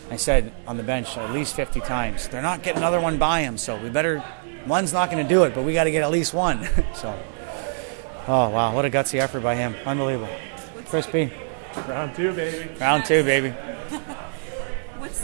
I said on the bench at least 50 times, they're not getting another one by him, so one's not going to do it, but we got to get at least one. So, oh, wow, what a gutsy effort by him. Unbelievable. Crispy. Round two, baby. Round two, baby.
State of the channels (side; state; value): left; silent; 59 dB below the other